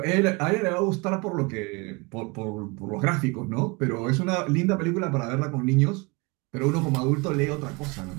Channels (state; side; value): quieter; left; 27.6 dB